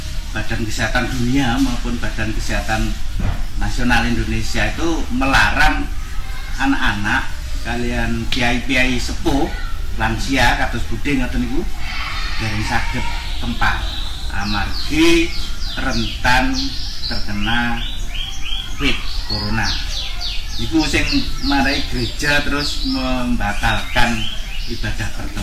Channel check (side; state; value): both; identical; correlation 1.00